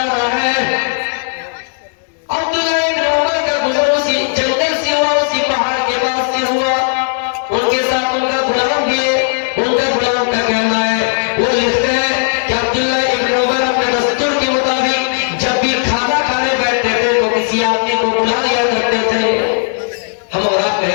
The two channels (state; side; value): silent; right; 65 dB below the other